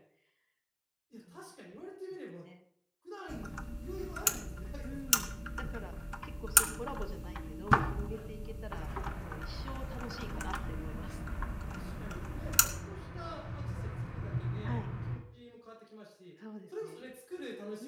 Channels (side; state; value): both; identical; correlation 1.00